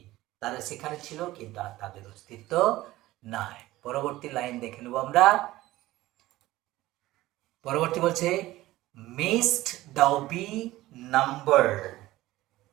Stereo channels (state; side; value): quieter; left; 17.0 dB